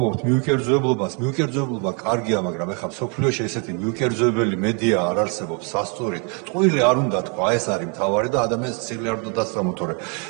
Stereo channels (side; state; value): left; quieter; 36.6 dB